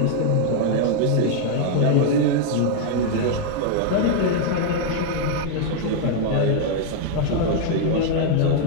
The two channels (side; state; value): both; different; correlation 0.00